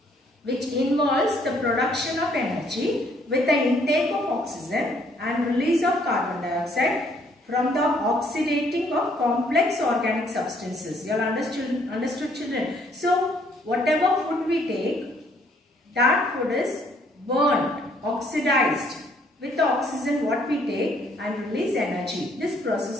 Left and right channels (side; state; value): both; normal; correlation 0.65